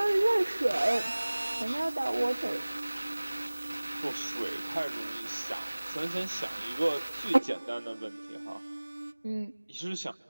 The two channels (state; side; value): inverted; both; correlation -1.00